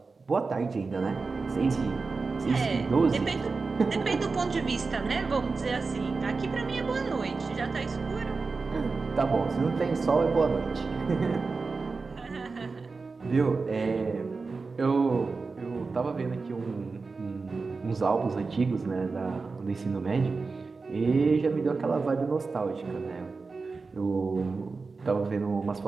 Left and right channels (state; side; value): quieter; left; 4.2 dB